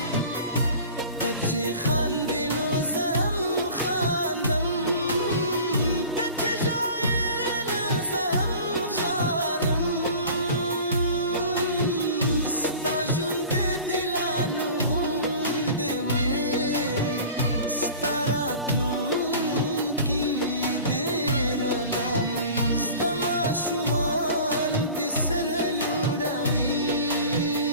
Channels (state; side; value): inverted; both; correlation -0.41